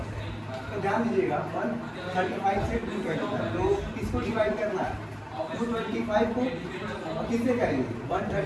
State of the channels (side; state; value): both; identical; correlation 1.00